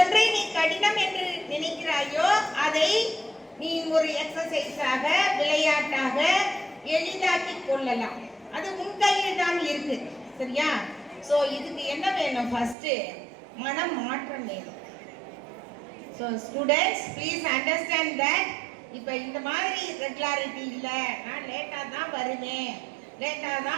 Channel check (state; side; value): drops out; left; at 12.8 s